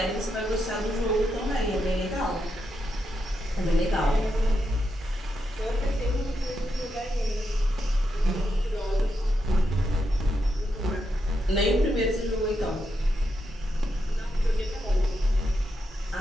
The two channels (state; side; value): normal; both; correlation 0.84